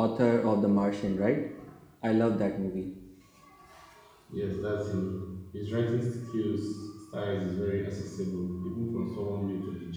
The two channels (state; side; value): identical; both; correlation 1.00